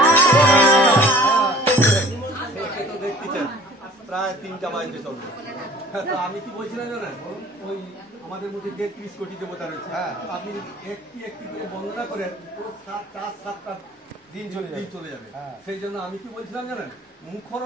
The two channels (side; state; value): both; normal; correlation 0.49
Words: সে তো দেখতেছেন প্রায় 3টা বাজতে চলবে। তো আমি কি বলছিলাম জানেন, ওই আমাদের মধ্যে যে 30 কোটি দেবতা রয়েছে, আপনি একটি একটি করে বন্দনা করেন, পুরো 7টা দিন চলে যাবে। সেই জন্য আমি কি বলছিলাম জানেন, মুখর